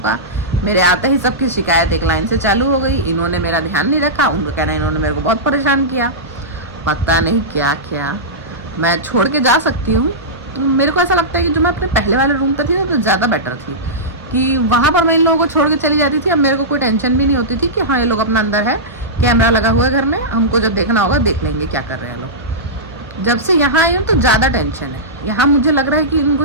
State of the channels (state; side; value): normal; both; correlation -0.15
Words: मेरे आते ही सबकी शिकायत एक लाइन से चालू हो गई, इन्होंने मेरा ध्यान नहीं रखा, उनको कहना इन्होंने मेरे को बहुत परेशान किया, पता नहीं क्या। मैं छोड़ के जा सकती हूँ, तो मेरे को ऐसा लगता है कि जो मैं अपने पहले वाले रूम पर थी ना, तो ज़्यादा बेटर थी, कि वहाँ पर मैं इन लोगों को छोड़ के चली जाती थी। अब मेरे को कोई टेंशन भी नहीं होती थी कि हाँ ये लोग अपना अंदर है, कैमरा लगा हुआ है घर में, हमको जब देखना होगा देख लेंगे क्या कर रहे हैं लोग। जब से यहाँ आई हूँ तो ज़्यादा टेंशन है। यहाँ मुझे लग रहा है कि